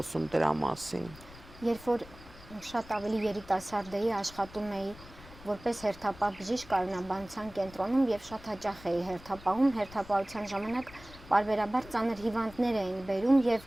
դրա մասին։ Երբ որ շատ ավելի երիտասարդ էի, աշխատում էի որպես հերթապահ բժիշկ կառունաբանության կենտրոնում եւ շատ հաճախ էի հերթապահում, հերթապահության ժամանակ պարբերաբար ծանր հիվանդներ էին բերում եւ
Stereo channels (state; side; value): noise; left; rumble, 19 dB below the sound